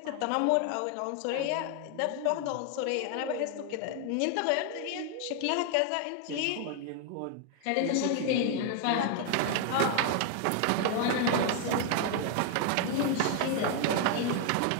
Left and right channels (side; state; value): both; different; correlation 0.00